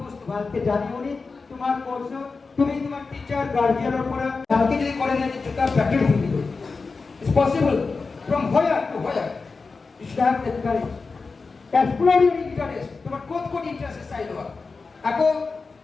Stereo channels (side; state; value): right; quieter; 4.3 dB